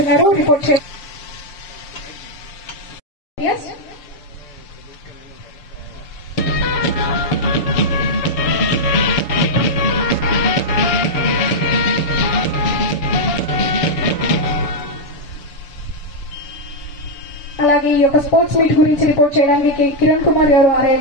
రిపోర్ట్ చేయాలి. అలాగే ఈ యొక్క స్పోర్ట్స్ మీట్ గురించి రిపోర్ట్ చేయడానికి కిరణ్ కుమార్ గారు, ఆర్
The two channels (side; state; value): right; late; 6.8 ms